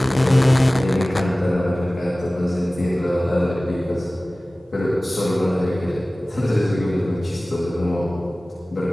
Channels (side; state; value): both; normal; correlation 0.98